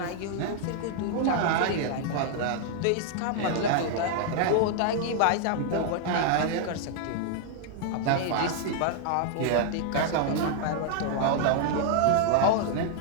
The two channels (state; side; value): different; both; correlation -0.01